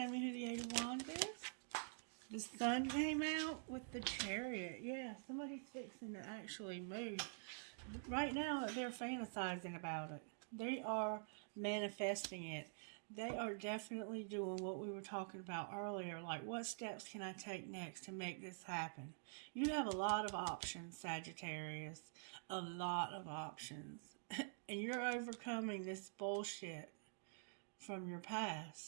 me who the Eight of Wands is? The Sun came out with the Chariot. Yeah, somebody's fixing to actually move. Right now, they're fantasizing about it. They are manifesting it. They are definitely doing what we were talking about earlier. Like, what steps can I take next to make this happen? You have a lot of options, Sagittarius. A lot of options. And you're overcoming this bullshit from your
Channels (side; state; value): left; silent; digital silence